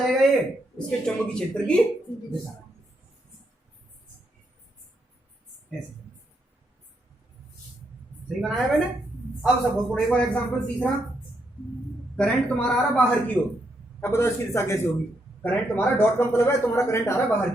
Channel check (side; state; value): both; normal; correlation 0.78